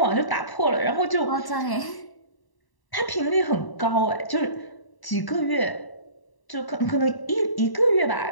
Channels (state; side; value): late; right; 1.0 ms